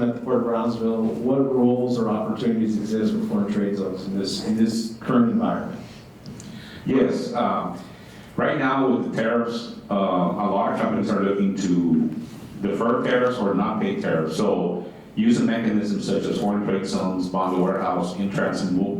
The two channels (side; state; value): both; identical; correlation 1.00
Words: at the Port of Brownsville. What roles or opportunities exist with foreign trade zones in this current environment? Yes, right now with the tariffs, a lot of companies are looking to defer tariffs or not pay tariffs. So using mechanisms such as foreign trade zones, bond warehouse, in-transit